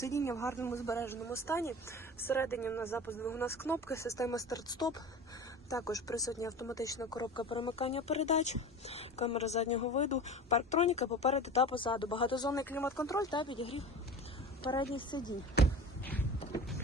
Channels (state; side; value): normal; both; correlation 0.35